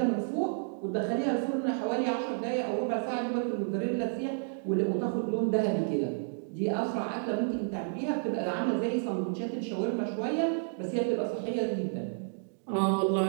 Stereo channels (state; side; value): silent; left; digital silence